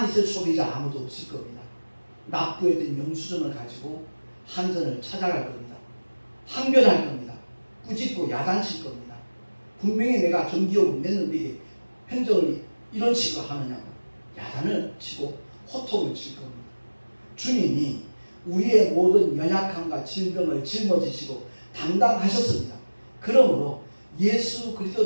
있을 소비자 아무도 없을 겁니다. 납부했던 영수증을 가지고 한전을 찾아갈 겁니다. 항변할 겁니다. 꾸짖고 야단칠 겁니다. 분명히 내가 전기요금 냈는데 이게 행정을 이런 식으로 하느냐고 야단을 치고 호통을 칠 겁니다. 주님이 우리의 모든 연약함과 질병을 짊어지시고 담당하셨습니다. 그러므로 예수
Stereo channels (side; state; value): both; inverted; correlation -1.00